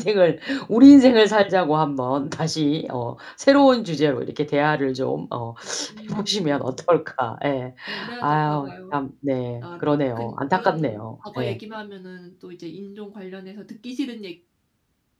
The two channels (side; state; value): both; identical; correlation 1.00